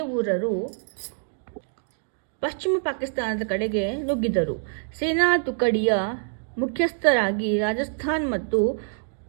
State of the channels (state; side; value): silent; left; 61 dB below the other